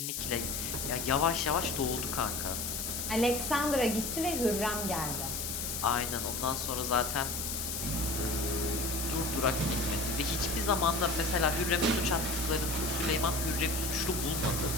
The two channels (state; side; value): noise; left; hiss, 3 dB below the sound